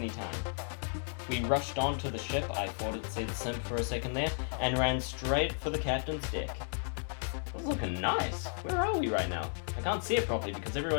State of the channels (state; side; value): silent; right; digital silence